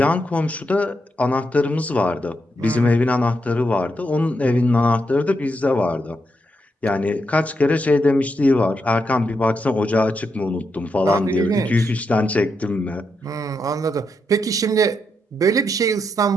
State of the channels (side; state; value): both; normal; correlation 0.82